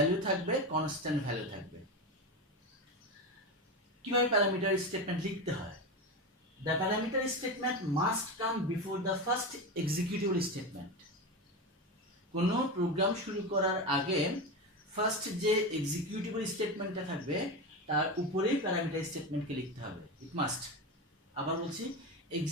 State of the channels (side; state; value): both; normal; correlation 0.19